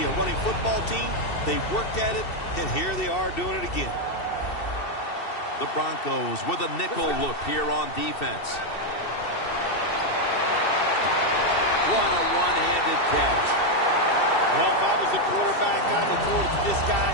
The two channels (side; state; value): right; late; 2.7 ms